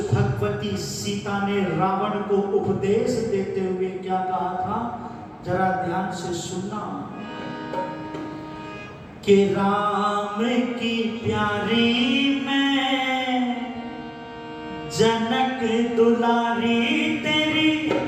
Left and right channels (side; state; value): both; identical; correlation 1.00